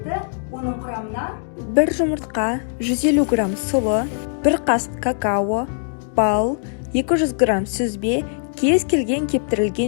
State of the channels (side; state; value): right; silent; 65 dB below the other